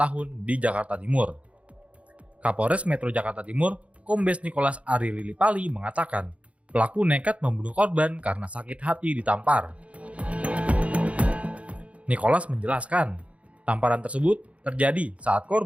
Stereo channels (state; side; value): late; left; 0.064 ms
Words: di Jakarta Timur. Kapolres Metro Jakarta Timur, Kombes Nicholas Ari Lilipali mengatakan, pelaku nekat membunuh korban karena sakit hati ditampar. Nicholas menjelaskan, tamparan tersebut terjadi saat